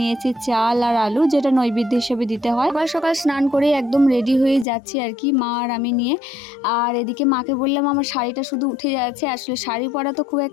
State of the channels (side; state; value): right; drops out; at 4.7 s